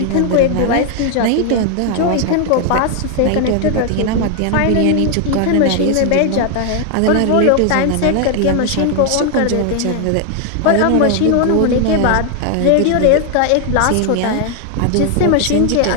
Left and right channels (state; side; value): different; both; correlation 0.00